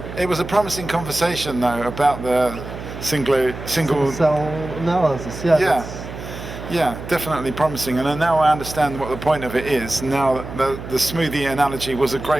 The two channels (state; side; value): noise; right; hum, 10 dB below the sound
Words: It was a promising conversation though about the single. Cell analysis, yeah. Yeah. that's- Yeah, definitely promising. And now I understand what the point of it is. Now the smoothie analogy was a